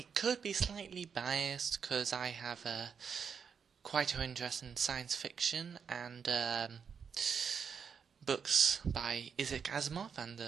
could be slightly biased because I have quite an interest in science fiction and books by Isaac Asimov and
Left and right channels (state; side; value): quieter; left; 6.6 dB